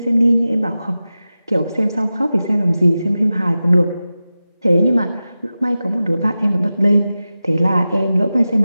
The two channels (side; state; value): both; inverted; correlation -0.94